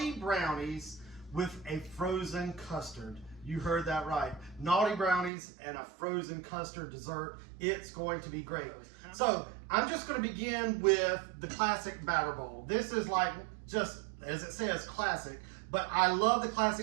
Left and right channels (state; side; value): drops out; left; at 5.3 s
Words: brownies with a frozen custard. You heard that right. Naughty brownies and a frozen custard dessert. It's going to be great. So I'm just going to begin with the classic batter bowl. This is like just, as it says, classic. But I love the